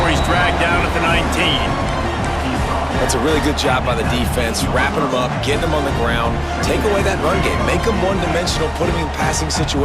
he's dragged down at the 19. That's a really good job by the defense, wrapping them up, getting them on the ground, take away that run game, make them one-dimensional, put them in passing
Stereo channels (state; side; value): identical; both; correlation 1.00